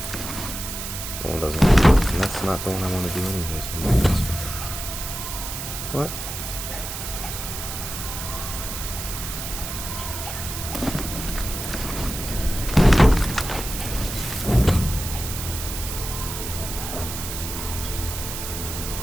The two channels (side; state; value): right; noise; hiss, 6 dB below the sound